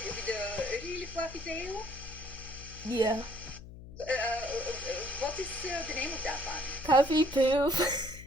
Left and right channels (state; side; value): noise; left; hum, 15 dB below the sound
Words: the really fluffy tail, Yeah. what is the name of that one? Puffy Poof.